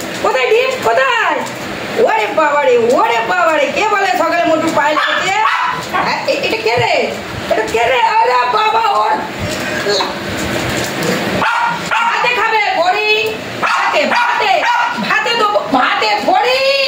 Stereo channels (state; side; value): identical; both; correlation 1.00